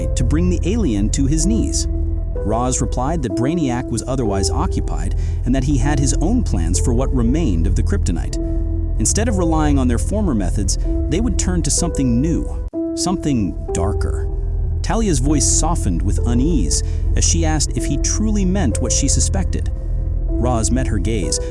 to bring the alien to his knees. Ra's replied that Brainiac was otherwise occupied and that he had his own plans for what remained of the kryptonite. Instead of relying on their former methods, they would turn to something new, something darker. Talia's voice softened with unease as she asked if he truly meant what she suspected. Ra's met her gaze,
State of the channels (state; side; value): identical; both; correlation 1.00